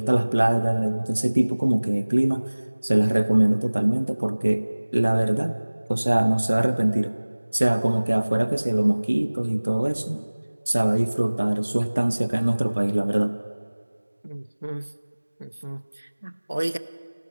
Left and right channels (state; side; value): inverted; both; correlation -1.00